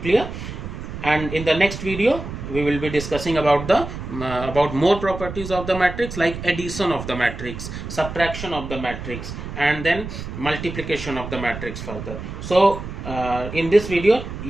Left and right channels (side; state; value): right; noise; rumble, 9 dB below the sound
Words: And in the next video we will be discussing about the about more properties of the matrix, like addition of the matrix, subtraction of the matrix, and then multiplication of the matrix further. So in this video